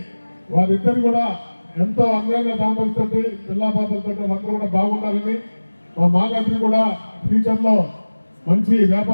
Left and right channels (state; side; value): inverted; both; correlation -1.00